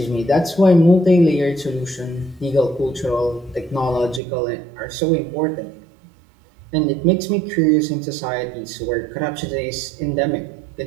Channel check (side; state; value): left; drops out; at 4.2 s